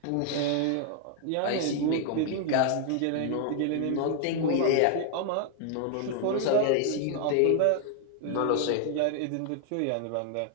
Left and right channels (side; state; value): both; different; correlation 0.00